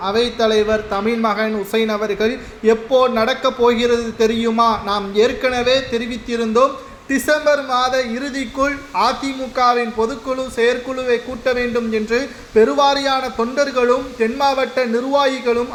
அவைத்தலைவர் தமிழ்மகன் உசைன் அவர்கள் எப்போ நடக்கப் போகிறது தெரியுமா? நாம் ஏற்கனவே தெரிவித்திருந்தோம். டிசம்பர் மாத இறுதிக்குள் அதிமுகவின் பொதுக்குழு செயற்குழுவை கூட்ட வேண்டும் என்று பெருவாரியான தொண்டர்களும் தென் மாவட்ட நிர்வாகிகளும்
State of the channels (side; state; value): both; identical; correlation 1.00